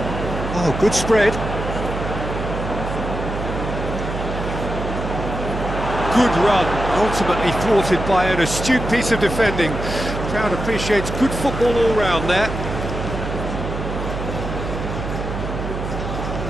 Oh, good spread. Good run, ultimately thwarted by an astute piece of defending. Crowd appreciates good football all round there.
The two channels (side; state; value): right; noise; hum, 5 dB below the sound